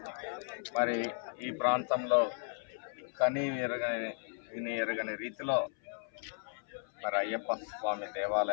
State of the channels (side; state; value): right; silent; 54 dB below the other